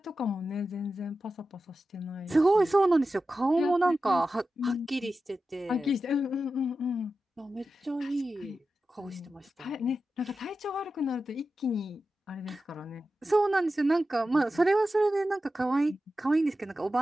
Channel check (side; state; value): both; normal; correlation 0.92